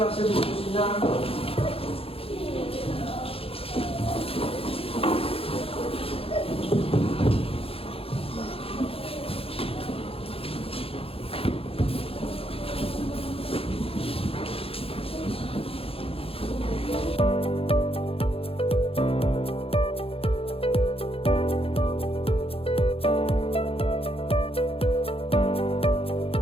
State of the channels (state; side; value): late; right; 0.27 ms